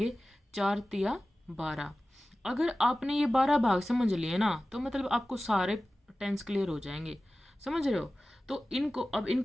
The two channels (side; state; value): both; normal; correlation 0.96